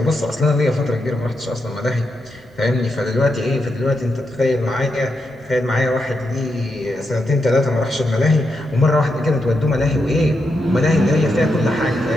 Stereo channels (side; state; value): both; normal; correlation 0.84